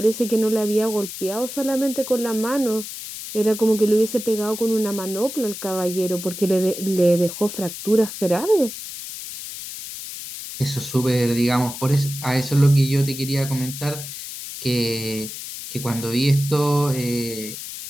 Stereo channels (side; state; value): left; noise; hiss, 10 dB below the sound